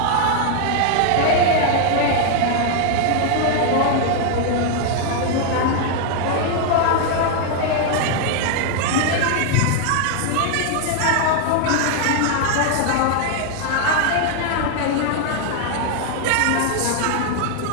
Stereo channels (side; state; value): both; different; correlation 0.00